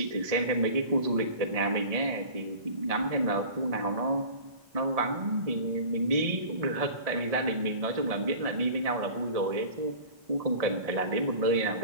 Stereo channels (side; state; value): left; late; 1.7 ms